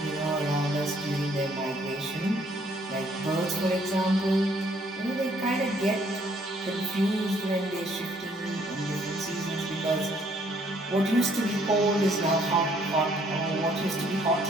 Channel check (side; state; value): both; normal; correlation 0.65